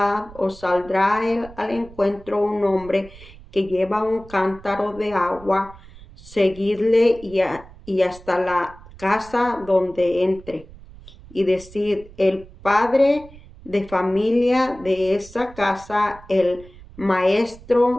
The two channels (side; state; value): right; noise; rumble, 20 dB below the sound